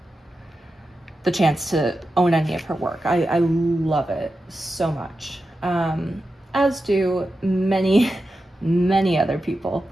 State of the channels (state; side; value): normal; both; correlation 0.91